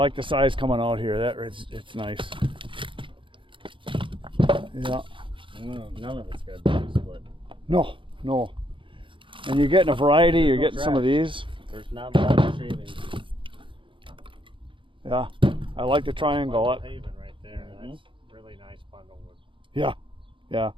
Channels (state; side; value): late; left; 0.25 ms